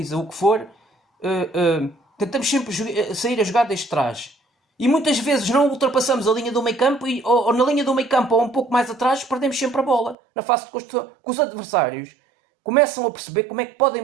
o que for. Tentamos sempre sair a jogar desde trás. E muitas vezes não ultrapassamos a linha do meio campo ou na linha do meio campo ou um pouco mais atrás perdemos sempre a bola. Na fase de construção, que os adversários começam a perceber como é que podem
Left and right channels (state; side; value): drops out; left; at 10.2 s